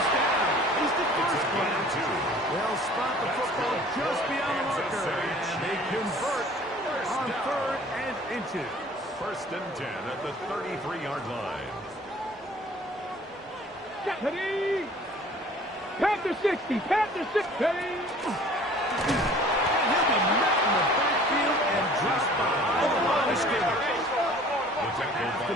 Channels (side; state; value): both; normal; correlation 0.50